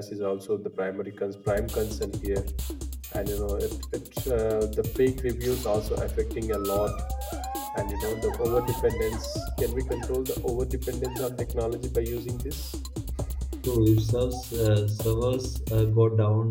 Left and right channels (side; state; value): both; identical; correlation 1.00